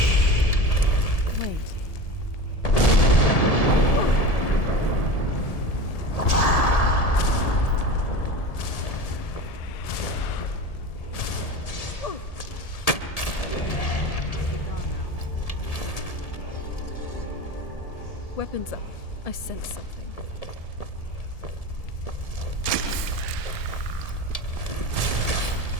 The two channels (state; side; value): late; right; 1.7 ms